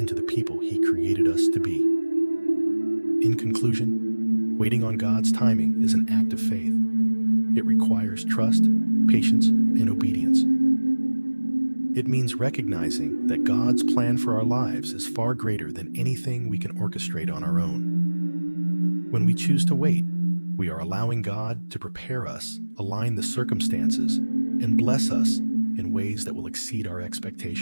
the people He created us to be. In conclusion, waiting on God's timing is an act of faith. It requires trust, patience, and obedience. It means recognizing that God's plan for our lives is far greater than anything we can orchestrate on our own. When we choose to wait, we are allowing God to prepare us, align the circumstances, and bless us in ways that will exceed our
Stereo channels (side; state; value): both; inverted; correlation -1.00